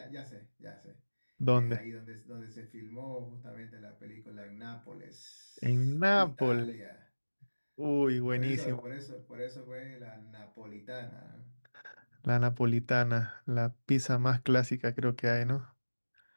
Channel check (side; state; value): both; inverted; correlation -1.00